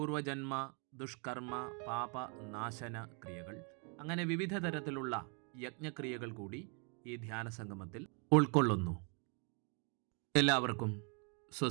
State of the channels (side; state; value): left; quieter; 36.5 dB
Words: ദുഷ്കർമ്മ പാപ നാശന ക്രിയകൾ, അങ്ങനെ വിവിധ തരത്തിലുള്ള യജ്ഞക്രിയകൾ കൂടി ഈ ധ്യാന സംഗമത്തിൽ ഉൾക്കൊള്ളുന്നു. എല്ലാവർക്കും